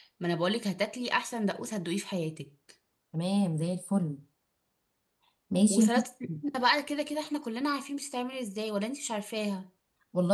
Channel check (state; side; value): identical; both; correlation 1.00